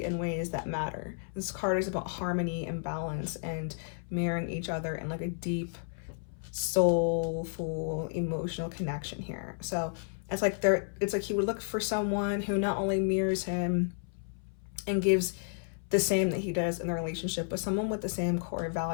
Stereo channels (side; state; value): right; silent; 56 dB below the other